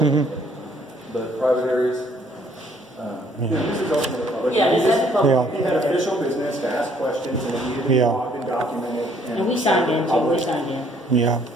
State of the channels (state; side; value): normal; both; correlation 0.63